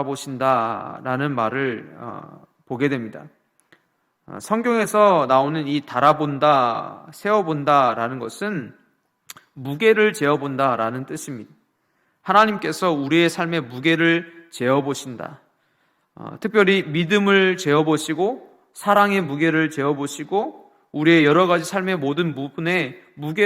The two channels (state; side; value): identical; both; correlation 1.00